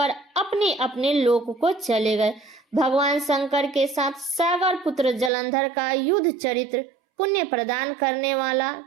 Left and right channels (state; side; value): drops out; left; at 5.3 s